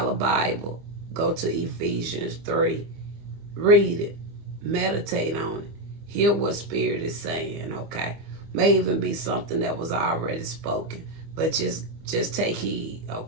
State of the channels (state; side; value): late; left; 25 ms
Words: a Bible. Go to Ephesians 3. Read it. Meditate on it. Hear what Spirit is saying, okay? May even be something that was already spoken. But just take heed,